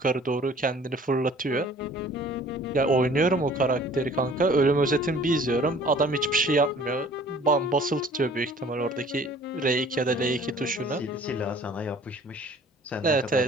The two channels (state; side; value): normal; both; correlation 0.51